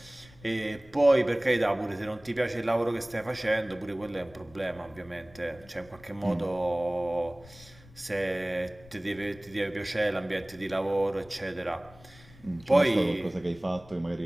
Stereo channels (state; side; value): noise; left; rumble, 23 dB below the sound